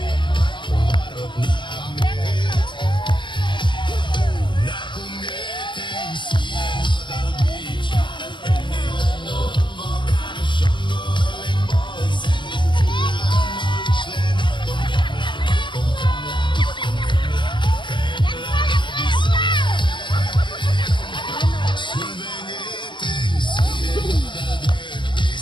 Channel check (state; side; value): late; right; 0.23 ms